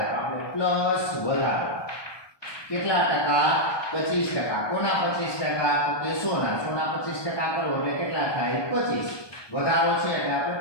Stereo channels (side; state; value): right; late; 1.2 ms